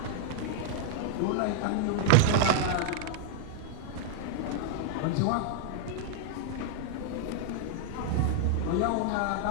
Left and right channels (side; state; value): both; different; correlation 0.00